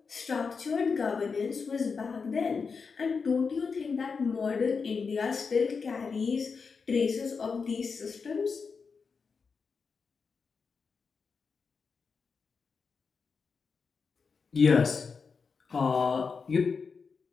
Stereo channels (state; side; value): quieter; right; 5.2 dB